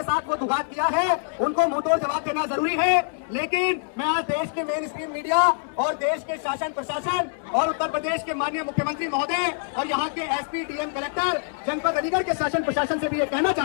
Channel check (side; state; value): right; silent; 62 dB below the other